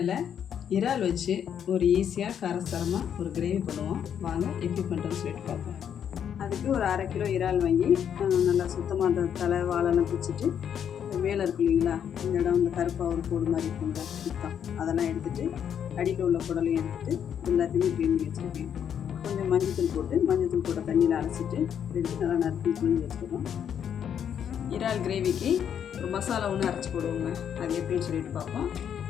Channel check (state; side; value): quieter; right; 8.6 dB